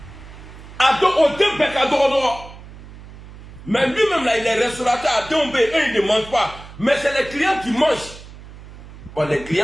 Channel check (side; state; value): right; noise; hum, 17 dB below the sound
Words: Mais lui-même là, il est restaurateur à Dombe, eux ils ne mangent pas. Mais c'est les clients qui mangent. Bon, les